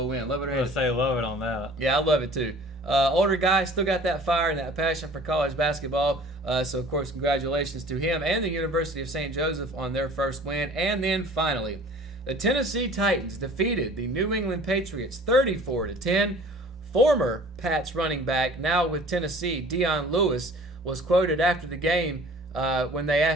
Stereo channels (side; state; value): both; normal; correlation 0.47